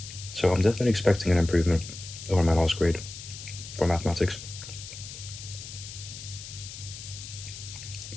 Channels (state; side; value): noise; left; hiss, 12 dB below the sound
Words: So I'm definitely expecting an improvement over my last grade for mathematics.